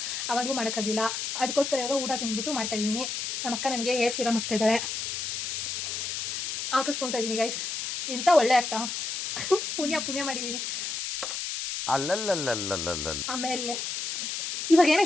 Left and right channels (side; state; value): left; noise; hiss, 3 dB below the sound